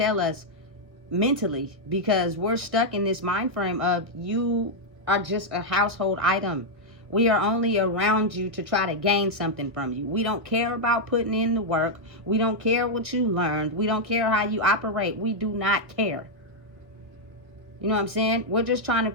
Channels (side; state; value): left; late; 1.6 ms